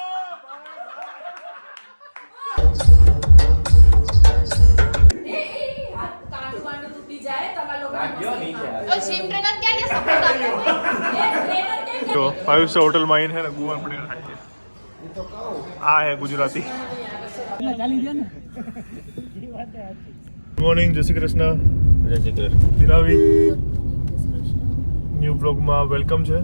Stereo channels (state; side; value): inverted; both; correlation -1.00